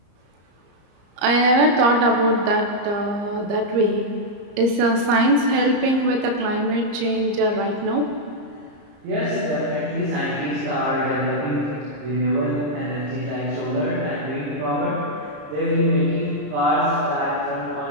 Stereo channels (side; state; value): left; late; 34 ms